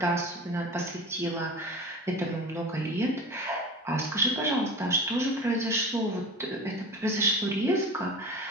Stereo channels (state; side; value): normal; both; correlation 0.34